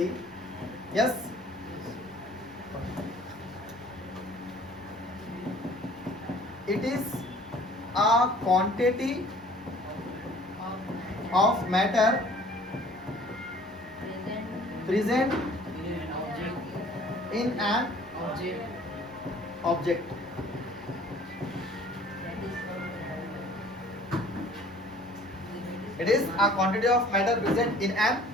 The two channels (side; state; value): both; normal; correlation 0.52